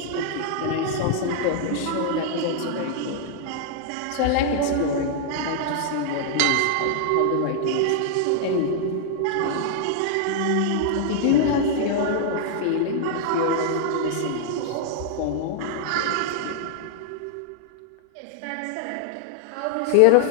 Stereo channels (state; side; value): different; both; correlation -0.01